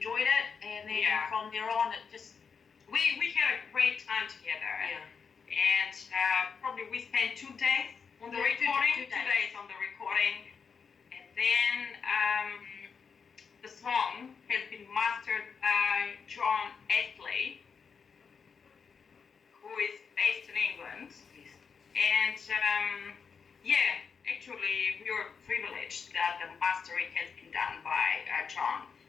it. And then from there on, it just we had a great time together. Yeah. And probably we spent 2 days on the recording. 2 days on the recording, and then the song has been mastered by John Astley, who is based in England. And actually we were privileged that the mastering has been done by John,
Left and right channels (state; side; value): quieter; right; 6.0 dB